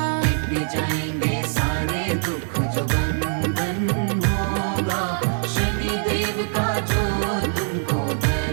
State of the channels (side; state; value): left; silent; 55 dB below the other